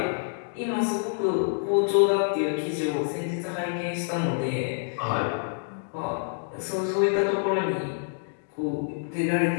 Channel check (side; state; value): right; silent; digital silence